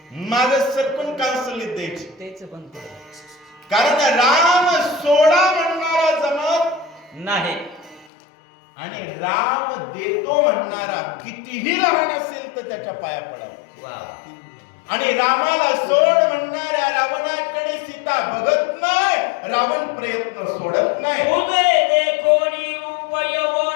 माग सरकून कांसुलीत द्यायची. तेच पण कारण राम सोडा म्हणणारा जमत नाही आणि राम देतो म्हणणारा कितीही लहान असेल तर त्याच्या पाया पडावा. आणि रामाला सोड म्हणणाऱ्या रावणाकडे सीता बघत नाही, रावण प्रयत्न सोडत नाही. उभे देखोनी रूप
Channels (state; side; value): drops out; right; at 8.1 s